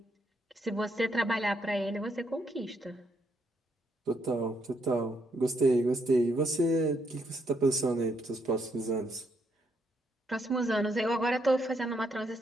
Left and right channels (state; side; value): normal; both; correlation 0.75